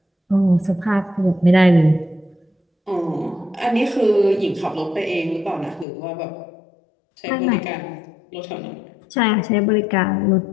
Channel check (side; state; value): right; drops out; at 5.9 s